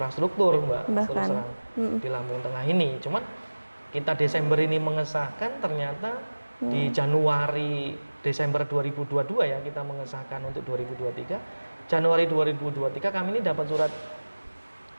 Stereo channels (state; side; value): inverted; both; correlation -1.00